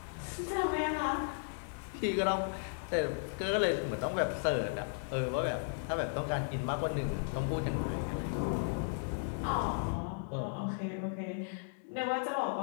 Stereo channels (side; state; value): right; silent; digital silence